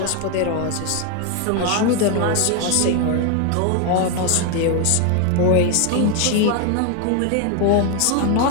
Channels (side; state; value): both; different; correlation 0.01